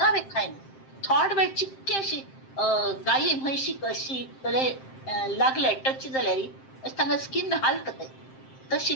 खायना थोड वेळ चिक्के अशी गायी म्हैशी कशी कले लागले टच जाल्यार अशी तांगा स्किन हालता तशी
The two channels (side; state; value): right; late; 7.6 ms